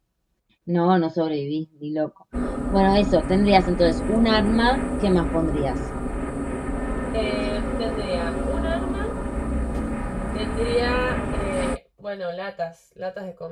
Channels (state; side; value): identical; both; correlation 1.00